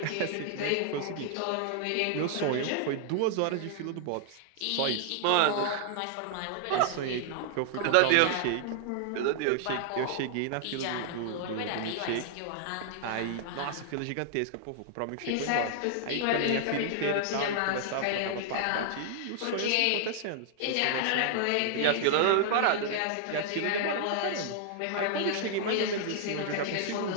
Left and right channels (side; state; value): both; different; correlation -0.01